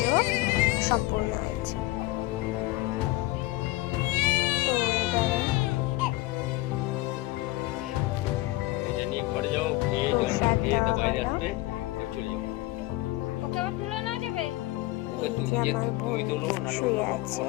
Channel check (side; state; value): right; quieter; 19.2 dB